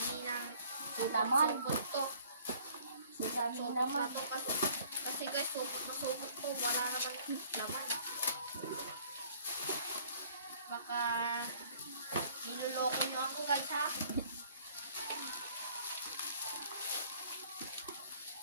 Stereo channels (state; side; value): inverted; both; correlation -0.55